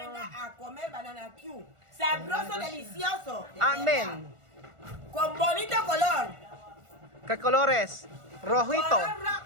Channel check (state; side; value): late; left; 1.4 ms